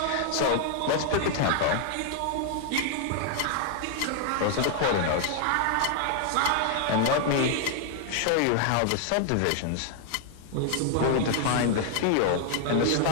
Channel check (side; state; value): both; different; correlation 0.00